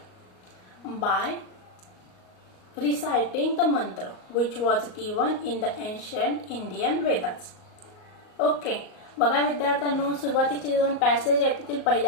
by reciting the mantra which was given in the ancient Indian Vedas. Okay, बघा विद्यार्थ्यांनो, सुरुवातीचे दोन passage आहेत त्यातील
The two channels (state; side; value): late; right; 38 ms